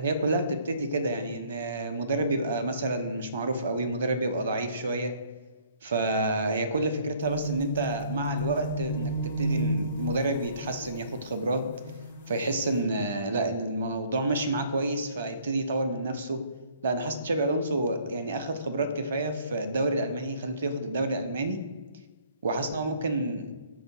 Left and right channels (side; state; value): both; inverted; correlation -0.59